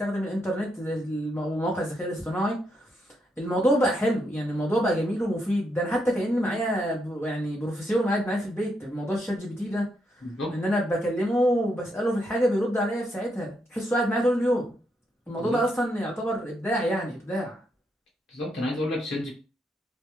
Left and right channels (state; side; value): normal; both; correlation 0.79